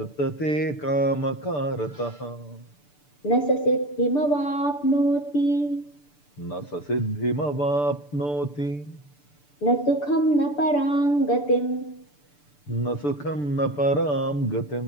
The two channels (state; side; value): late; right; 6.8 ms